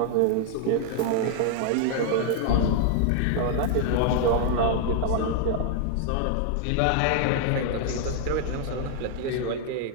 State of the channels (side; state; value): both; different; correlation 0.00